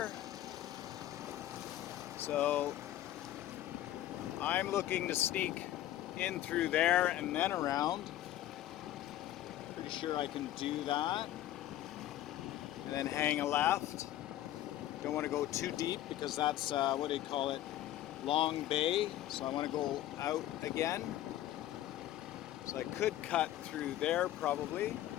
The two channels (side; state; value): right; quieter; 13.5 dB